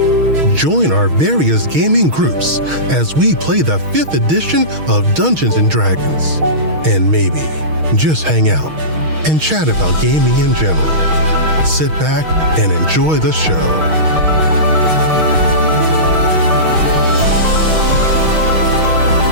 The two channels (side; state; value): left; late; 6.4 ms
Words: Join our various gaming groups as we play the 5th edition of Dungeons & Dragons. And maybe just hang out and chat about gaming in general. Sit back and enjoy the show.